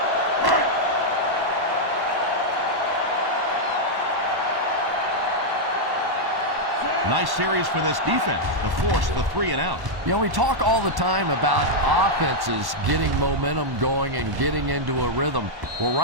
Nice series for this defense to force the 3 and out. You know, we talk all the time about offenses getting momentum going and getting into a rhythm. Well,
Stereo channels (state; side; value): late; left; 1.1 ms